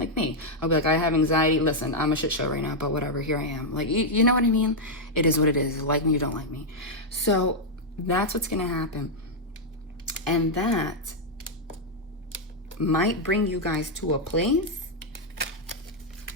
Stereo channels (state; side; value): normal; both; correlation -0.02